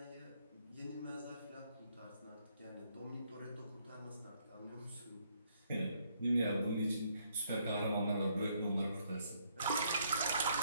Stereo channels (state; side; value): inverted; both; correlation -0.70